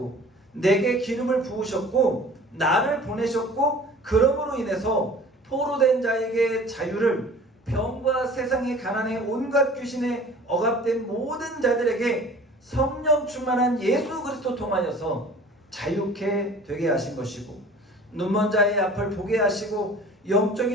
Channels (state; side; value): normal; both; correlation 0.46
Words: 내게 기름을 부으셨고 나를 보내셨고 그러므로 인해서 포로된 자에게 자유를 병과 세상의 가난에 온갖 귀신에 억압된 모든 자들에게 성령 충만한 예수 그리스도 통하여서 자유케 되게 하신 것이고 눈먼 자의 앞을 보게 하시고